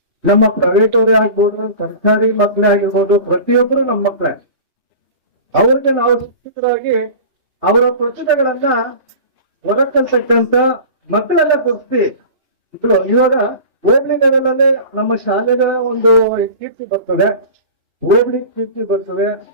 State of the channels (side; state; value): left; late; 2.9 ms